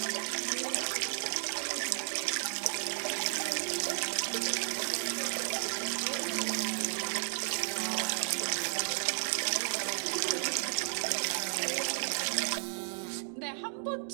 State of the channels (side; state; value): left; silent; digital silence